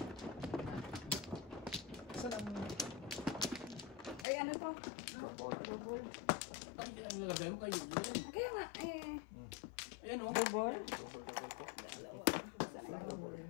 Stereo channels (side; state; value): right; drops out; at 4.2 s